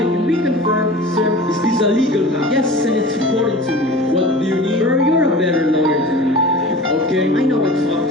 Can we confirm, sir? is this a legal matter? Yes, and it's important to me. What do you need? Sir, you're a better lawyer than me. Okay. I know I talk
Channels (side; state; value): both; normal; correlation 0.38